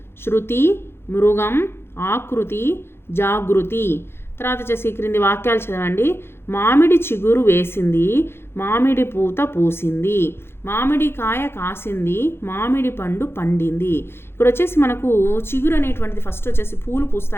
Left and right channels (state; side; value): late; right; 0.11 ms